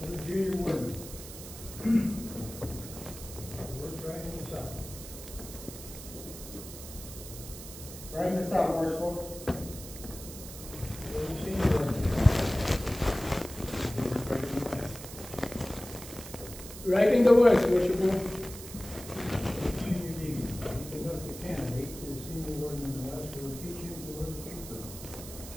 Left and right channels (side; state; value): right; noise; hiss, 13 dB below the sound